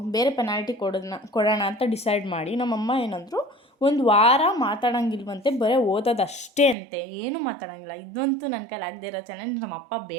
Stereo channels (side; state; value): left; drops out; at 6.8 s